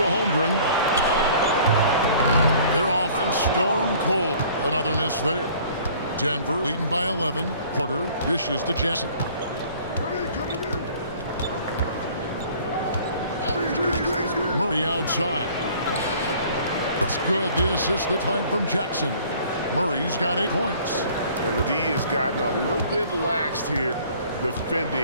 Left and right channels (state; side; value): inverted; both; correlation -0.52